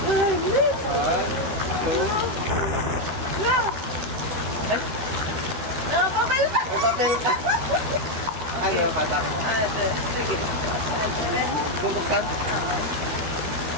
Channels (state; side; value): late; left; 13 ms